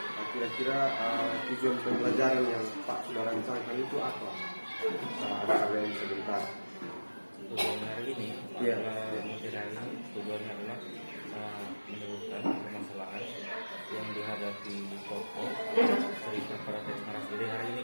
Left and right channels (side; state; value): both; inverted; correlation -1.00